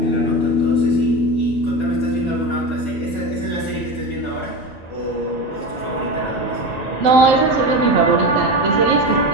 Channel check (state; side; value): normal; both; correlation 0.23